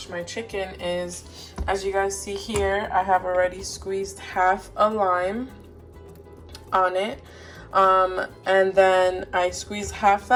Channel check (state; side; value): identical; both; correlation 1.00